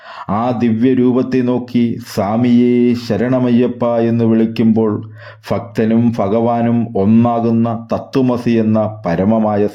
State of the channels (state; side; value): identical; both; correlation 1.00